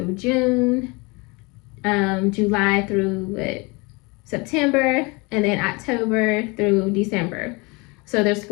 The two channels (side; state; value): right; quieter; 27.5 dB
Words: June, July through September, and then October through December. So there's